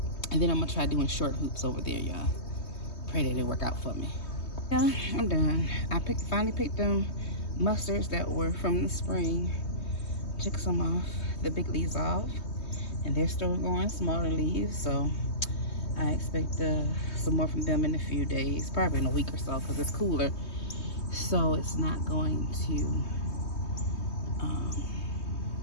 then I'm gonna try doing short hoops over there, y'all. Pray that it work out for me. Yeah, I'm done. I finally picked them mustards that were from the spring. Took some off, the big leaves off, and they're still going, smaller leaves. So I expect some more from them in a few days, probably in a week or so, because it's cooler. So it's not going to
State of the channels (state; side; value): late; right; 3.2 ms